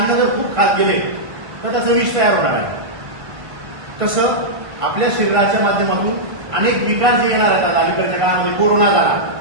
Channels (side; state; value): left; late; 1.5 ms